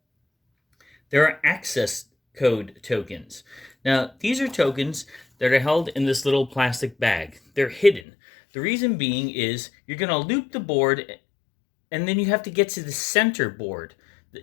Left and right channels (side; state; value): right; drops out; at 8.0 s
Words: There are access code tokens. Now, these are tokens that are held in this little plastic bag. They're hidden. The reason being is you're going to loop the board, and then you have to get to the center board.